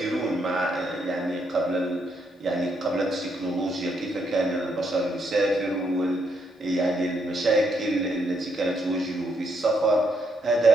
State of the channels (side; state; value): both; normal; correlation 0.76